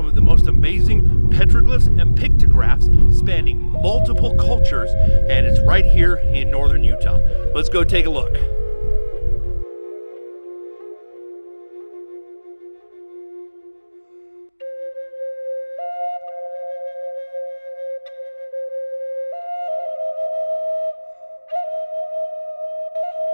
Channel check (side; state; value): both; inverted; correlation -1.00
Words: of the most amazing petroglyphs and pictographs spanning multiple cultures, and it's right here in northern Utah. Let's go take a look.